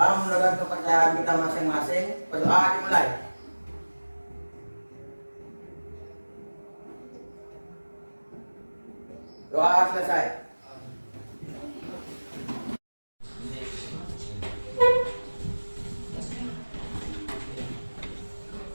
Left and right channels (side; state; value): both; inverted; correlation -1.00